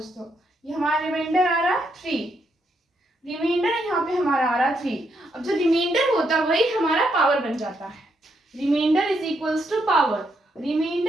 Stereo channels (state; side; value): normal; both; correlation 0.77